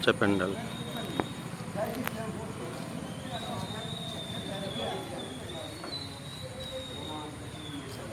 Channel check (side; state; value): both; identical; correlation 1.00